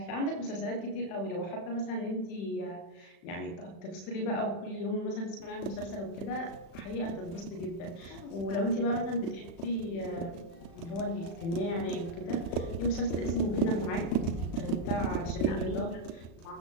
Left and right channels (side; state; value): right; late; 36 ms